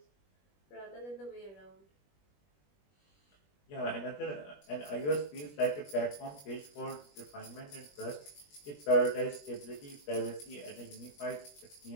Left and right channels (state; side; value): late; right; 21 ms